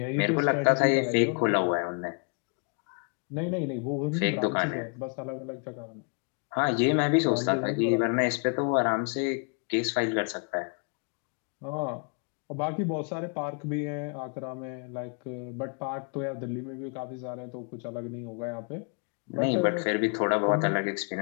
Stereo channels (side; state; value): right; quieter; 39.4 dB